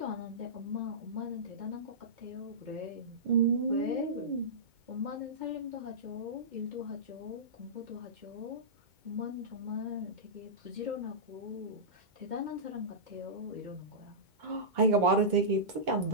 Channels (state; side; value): late; left; 2.2 ms